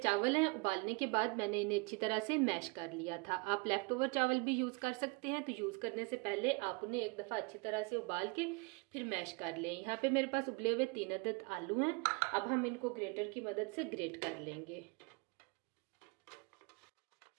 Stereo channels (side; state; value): left; quieter; 30.3 dB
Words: हैं। उबालने के बाद मैंने इन्हें अच्छी तरह से मैश कर लिया था। आप लेफ्ट ओवर चावल भी यूज कर सकते हैं, तो यूज करने से पहले आप उन्हें एक दफा अच्छी तरह से उबाल के फिर मैश कर लें। यहाँ पे मेरे पास उबले हुए 3 अदद आलू हैं। अब हम इनको ग्रेटर की मदद से ग्रेट कर लेंगे।